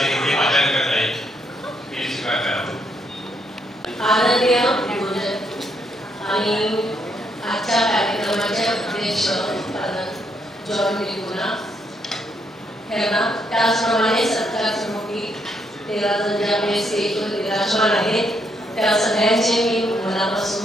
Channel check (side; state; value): both; normal; correlation 0.75